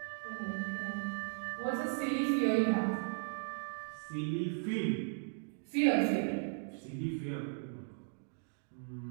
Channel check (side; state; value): left; silent; digital silence